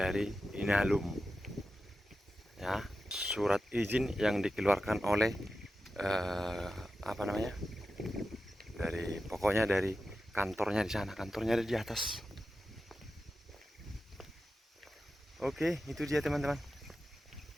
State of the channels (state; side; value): normal; both; correlation 0.92